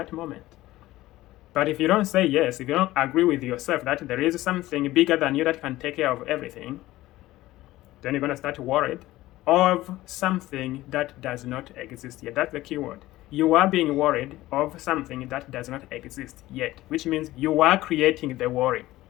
moment. But if you don't say yes, if you don't agree with yourself that there is something bigger than you that can take care of everything, then you're going to start worried of something that does not exist yet. That's the key word. You are being worried of something that does not exist yet, which means you are creating the worry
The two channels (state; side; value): quieter; right; 16.8 dB